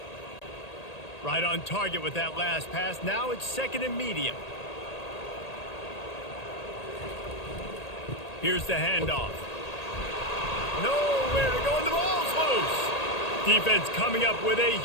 Right on target with that last pass. Now it's 2nd and medium. Here's the handoff. Nowhere to go, and the ball's loose. Defense coming up with a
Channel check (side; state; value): right; late; 1.8 ms